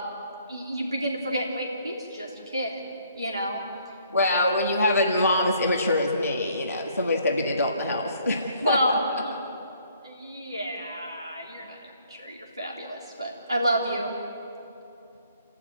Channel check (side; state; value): both; inverted; correlation -0.63